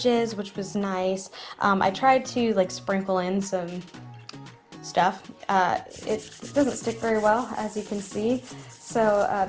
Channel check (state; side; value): identical; both; correlation 1.00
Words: which was nice. I tried to like sprinkle in some stuff. It doesn't stick very well, as you can see. So